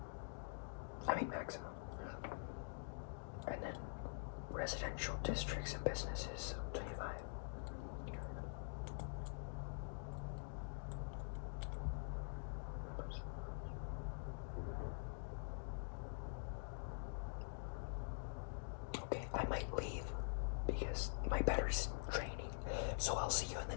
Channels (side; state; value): right; silent; digital silence